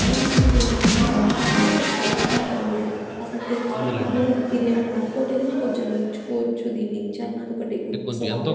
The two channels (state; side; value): identical; both; correlation 1.00